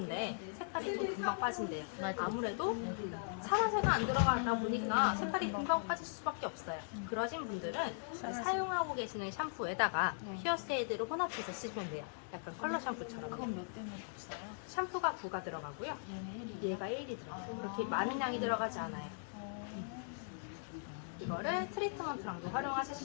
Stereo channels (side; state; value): right; silent; digital silence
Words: 색깔이 또 금방 빠진대요. 아무래도 산화제가 안 들어가다 보니까 색깔이 금방 빠질 수밖에 없어요. 그러신 분들은 사용하고 계시는 샴푸에다가 피어세이드를 혼합해서 쓰시면 돼요. 약간 컬러 샴푸처럼. 샴푸가 9가 들어가고요. 얘가 1이 들어가요. 그렇게 많은 양이 들어가지 않아요. 이거를 트리트먼트랑도 활용하실